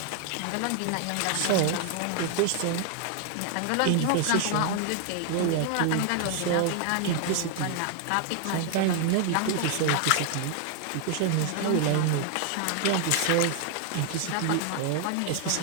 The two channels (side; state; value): both; different; correlation 0.00